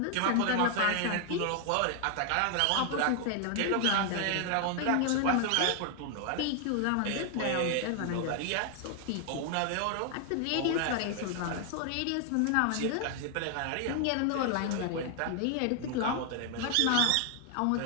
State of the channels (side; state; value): both; different; correlation 0.00